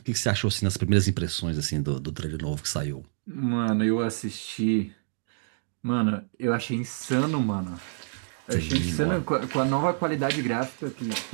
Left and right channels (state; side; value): silent; left; digital silence